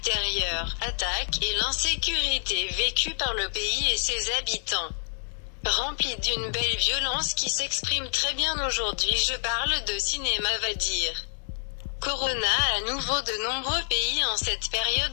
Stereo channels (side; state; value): right; silent; digital silence